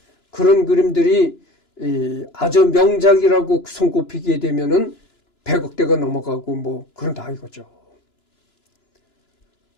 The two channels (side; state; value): right; late; 2.9 ms